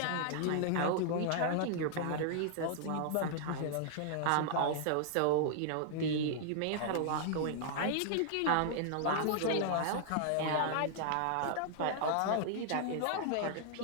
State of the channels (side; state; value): both; different; correlation -0.01